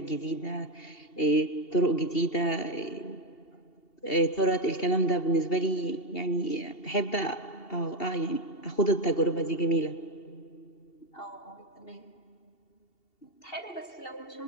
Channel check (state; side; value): late; right; 2.7 ms